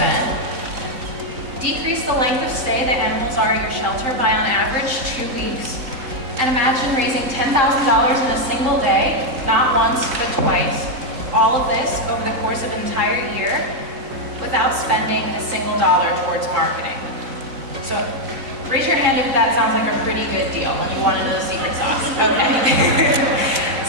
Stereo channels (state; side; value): late; left; 3.8 ms